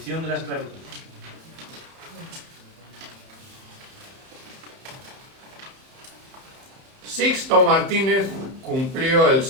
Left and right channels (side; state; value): left; late; 31 ms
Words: de la esclavitud. Sixto Martínez cumplió el